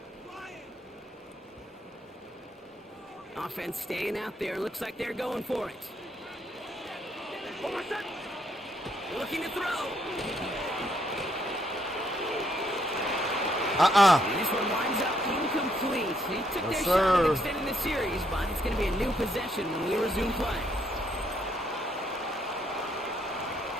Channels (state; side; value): normal; both; correlation 0.73